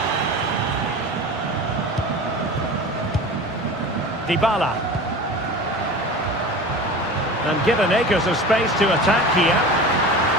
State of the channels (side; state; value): both; normal; correlation 0.34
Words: Dybala. And given acres of space to attack here.